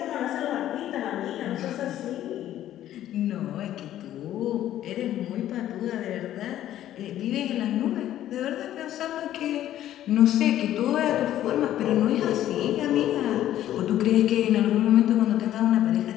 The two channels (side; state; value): right; quieter; 12.5 dB